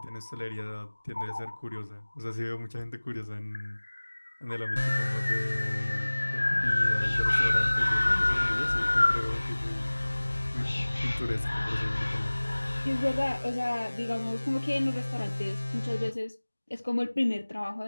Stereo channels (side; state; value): both; inverted; correlation -1.00